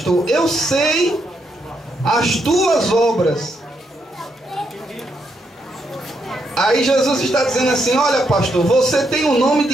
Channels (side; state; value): both; normal; correlation 0.78